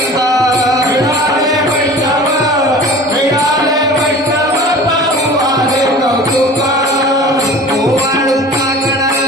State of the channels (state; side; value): normal; both; correlation 0.40